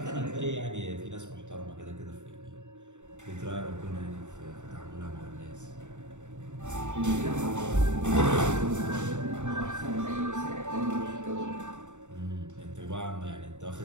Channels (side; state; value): left; late; 0.84 ms